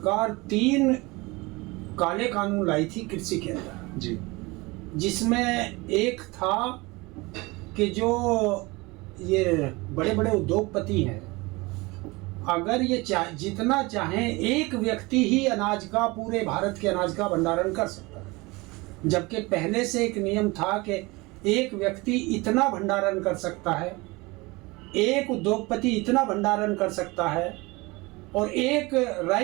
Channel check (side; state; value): left; quieter; 23.8 dB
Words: 3 काले कानून लाई थी कृषि के अंदर जी। जिसमें एक था कि जो ये बड़े बड़े उद्योगपति हैं, अगर ये जितना चाहे एक व्यक्ति ही अनाज का, पूरे भारत के अनाज का भंडारण कर सकता है, जबकि पहले से एक नियम था कि एक व्यक्ति इतना भंडारण कर सकता है, एक उद्योगपति इतना भंडारण कर सकता है और एक